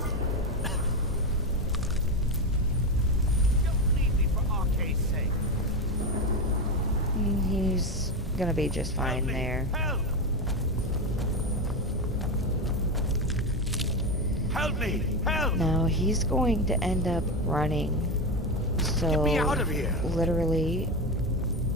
Don't leave me for Arcade's sake! He's gonna be just Help fine me. there. Help! Help me! Help! Now he's going to end up running. So Get me out of here! literally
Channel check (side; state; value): both; normal; correlation 0.15